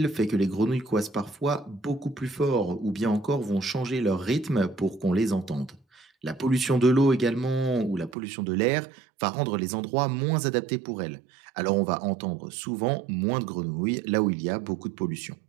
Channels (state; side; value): drops out; left; at 8.2 s